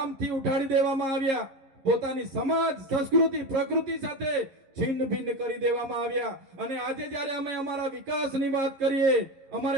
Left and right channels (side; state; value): left; late; 11 ms